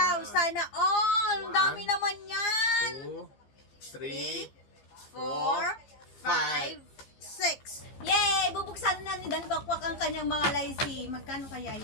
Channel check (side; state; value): right; late; 15 ms